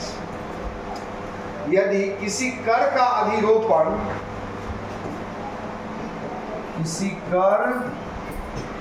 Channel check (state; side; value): identical; both; correlation 1.00